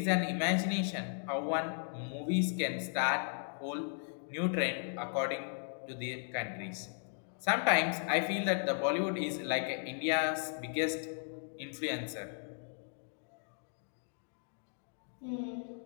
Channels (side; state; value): right; silent; 54 dB below the other